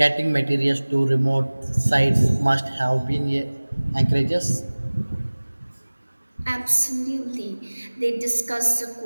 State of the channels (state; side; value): inverted; both; correlation -1.00